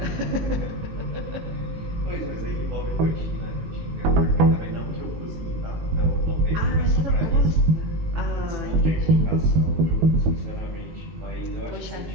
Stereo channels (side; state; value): left; late; 18 ms